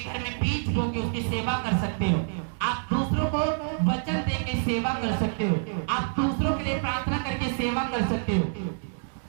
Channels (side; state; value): left; silent; digital silence